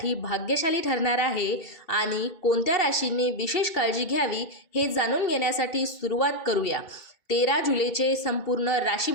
भाग्यशाली ठरणार आहे आणि कोणत्या राशींनी विशेष काळजी घ्यावी हे जाणून घेण्यासाठी सुरुवात करूया. 13 जुलैचे संपूर्ण राशी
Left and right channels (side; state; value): right; late; 2.7 ms